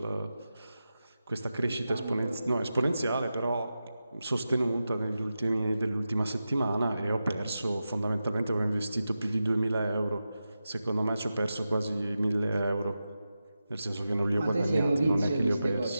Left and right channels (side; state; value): both; inverted; correlation -0.92